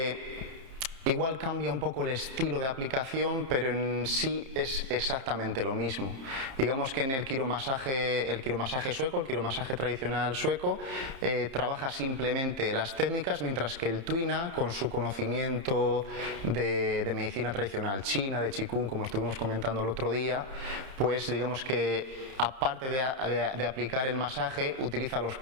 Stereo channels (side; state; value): left; late; 30 ms